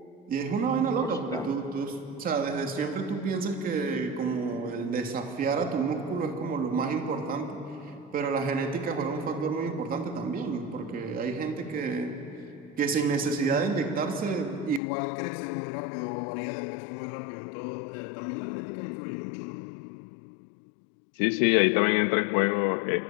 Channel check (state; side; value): drops out; right; at 14.8 s